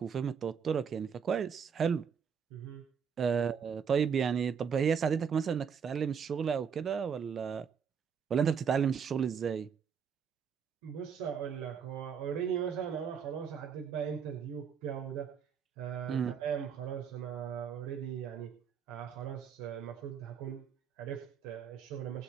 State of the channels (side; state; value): left; quieter; 7.0 dB